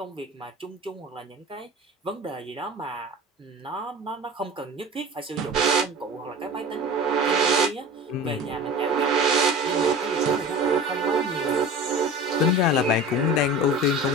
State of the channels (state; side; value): normal; both; correlation 0.36